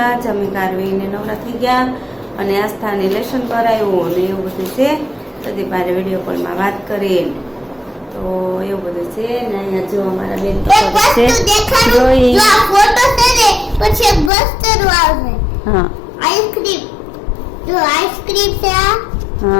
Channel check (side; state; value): right; drops out; at 14.3 s